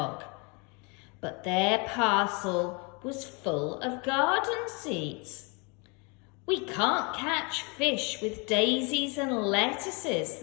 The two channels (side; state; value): right; quieter; 31.8 dB